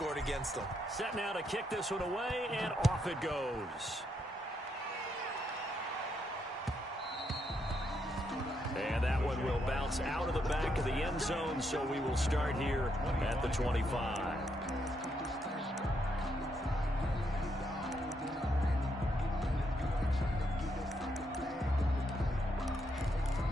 against them. Set now to kick this one away, and off it goes. And that one will bounce out of the back of the end zone, so we will start here at the 25.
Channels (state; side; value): normal; both; correlation 0.78